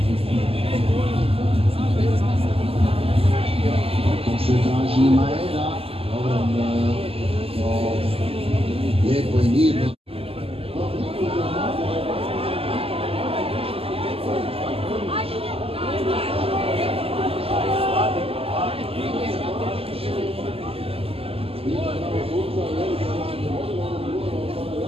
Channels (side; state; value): left; late; 0.28 ms